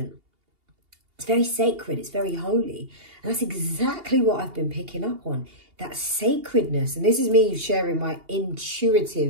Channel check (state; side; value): late; left; 2.8 ms